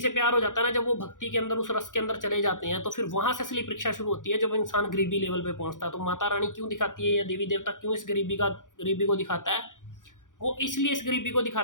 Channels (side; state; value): right; late; 0.87 ms